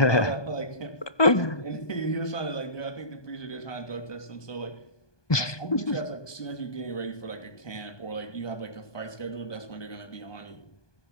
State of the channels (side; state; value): right; late; 1.2 ms